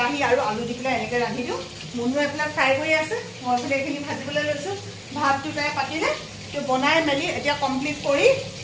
আৰু আলু দি পেলাই এনেকৈ ৰান্ধি দিওঁ মুনুৱে এইফালে ফ্ৰাই কৰি আছে মই এইফালে এইখিনি ভাজিবলৈ লৈছোঁ ভাতটো তাই পাতিলে তো বনাই মেলি এতিয়া কমপ্লিট কৰি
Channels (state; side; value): identical; both; correlation 1.00